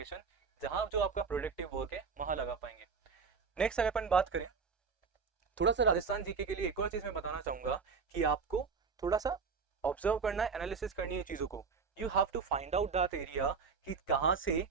जहां जो आपका प्रोडक्टिव वर्क है वहां लगा पाएंगे। नेक्स्ट अगर अपन बात करें थोड़ा सा राजस्थान जीके के लिए, एक और चीज मैं बताना चाहूंगा कि आपको थोड़ा सा ऑब्जर्व करना है, एनालिसिस करनी है चीजों को। You have to find out that area कि कहाँ से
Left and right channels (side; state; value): left; quieter; 5.3 dB